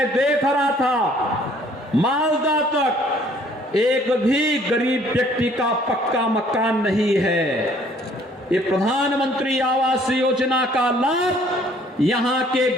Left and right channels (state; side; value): normal; both; correlation 0.59